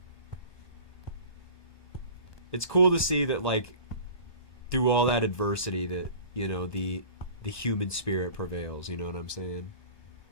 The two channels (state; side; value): late; right; 1.2 ms